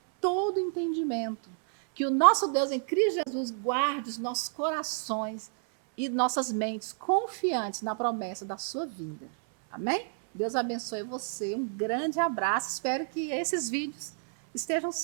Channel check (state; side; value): silent; left; 58 dB below the other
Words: todo entendimento. Que o nosso Deus em Cristo Jesus guarde os nossos corações e nossas mentes confiantes na promessa da sua vida. Amém? Deus abençoe você. Um grande abraço. Espero que esses vídeos estejam